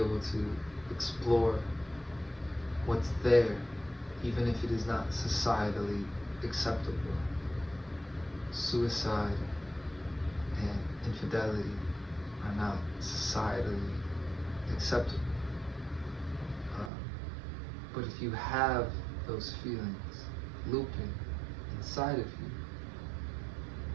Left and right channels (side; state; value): left; drops out; at 16.9 s